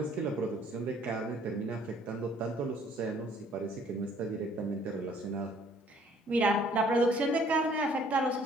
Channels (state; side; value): normal; both; correlation 0.59